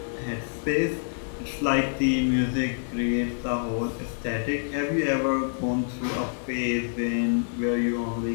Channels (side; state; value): right; silent; digital silence